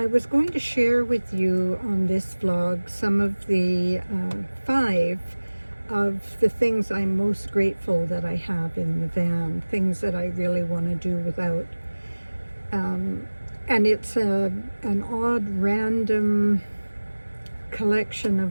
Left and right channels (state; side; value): inverted; both; correlation -1.00